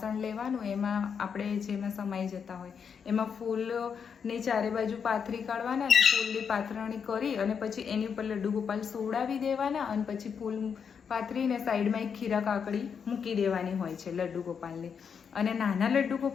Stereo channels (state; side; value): quieter; right; 6.8 dB